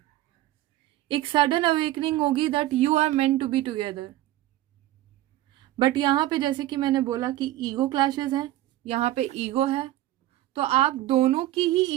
एक सडन अवेकनिंग होगी that you are meant to be together. But यहाँ पे जैसे कि मैंने बोला कि ईगो क्लैशेस हैं, यहाँ पे ईगो है, तो आप दोनों की ही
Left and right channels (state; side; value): quieter; left; 15.2 dB